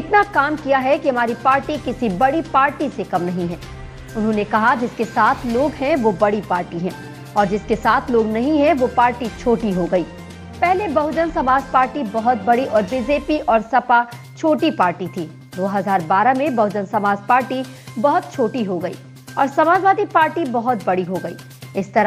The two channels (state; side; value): identical; both; correlation 1.00